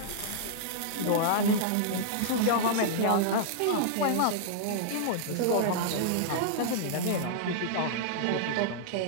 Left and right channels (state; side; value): different; both; correlation -0.01